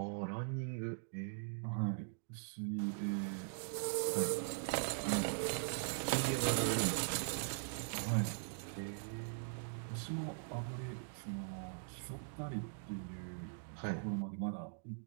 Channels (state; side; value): silent; left; digital silence